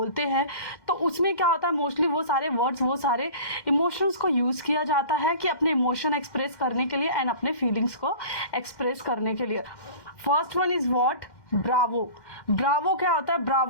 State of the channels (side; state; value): right; late; 2.1 ms